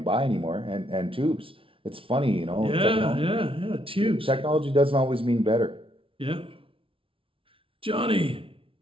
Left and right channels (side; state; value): left; late; 0.26 ms